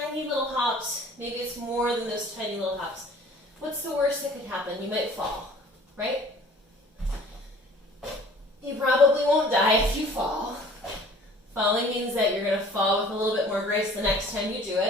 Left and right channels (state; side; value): normal; both; correlation 0.50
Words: tiny little hops. Maybe it's more than those tiny little hops. What's the worst that could happen? You might fall, right? You probably won't die if you fall. Falling means that you're going to fall with a little bit more grace the next time you do